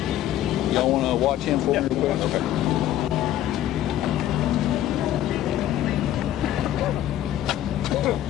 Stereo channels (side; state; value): right; quieter; 12.5 dB